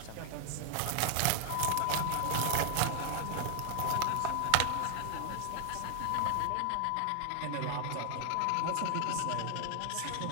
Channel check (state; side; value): different; both; correlation 0.00